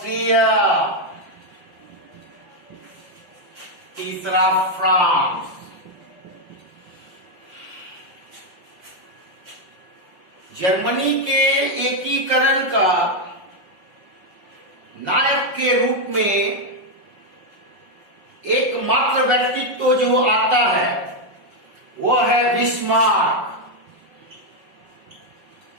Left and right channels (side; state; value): left; late; 5.5 ms